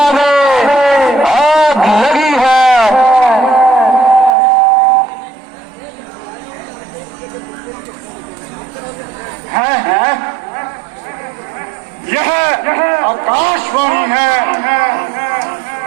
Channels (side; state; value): left; drops out; at 4.4 s